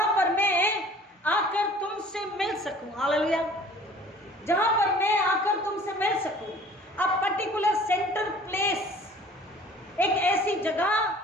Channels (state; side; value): normal; both; correlation 0.50